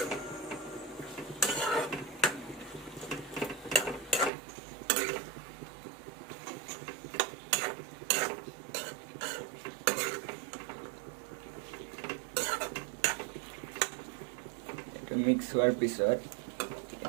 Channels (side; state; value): left; drops out; at 4.3 s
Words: মিক্স হোৱাৰ পিছত